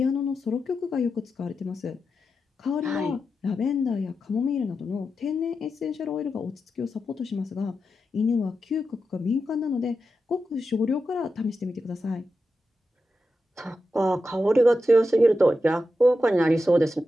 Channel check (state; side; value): normal; both; correlation 0.89